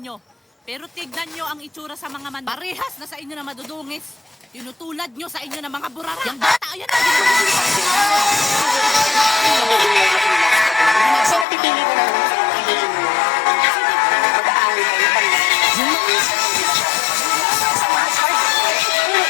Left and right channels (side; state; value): right; drops out; at 11.5 s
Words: Pero tignan nyo ang itsura sa mga manok. Parehas na sa inyo na madudungis. Tinutulad nyo sa inyo na mga burara. Yang bata, ayan na. So, napipili mo lang mag-aaral kayo pag